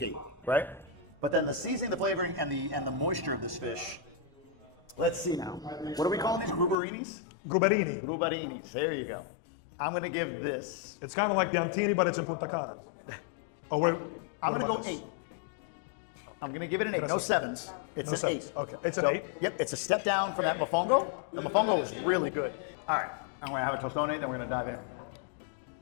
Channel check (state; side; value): drops out; right; at 6.8 s